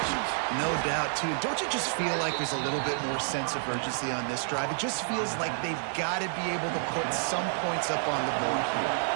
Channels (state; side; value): silent; left; digital silence